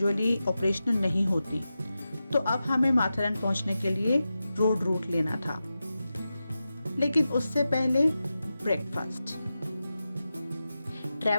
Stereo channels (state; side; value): inverted; both; correlation -0.92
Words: ऑपरेशनल नहीं होती, तो अब हमें माथेरन पहुंचने के लिए रोड रूट लेना था। लेकिन उससे पहले ब्रेकफास्ट।